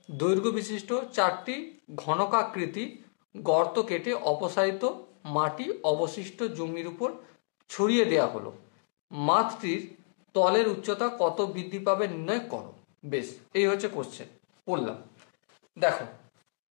দৈর্ঘ্য বিশিষ্ট 4টি ঘনকাকৃতি গর্ত কেটে অপসারিত মাটি অবশিষ্ট জমির উপর ছড়িয়ে দেওয়া হলো। মাঠটির তলের উচ্চতা কত বৃদ্ধি পাবে নির্ণয় করো। বেশ, এই হচ্ছে কোশ্চেন। পড়লাম, দেখো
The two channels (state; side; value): silent; right; digital silence